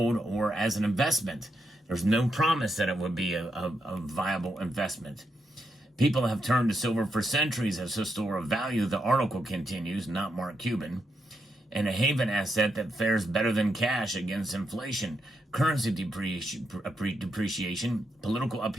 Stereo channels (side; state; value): both; normal; correlation 0.82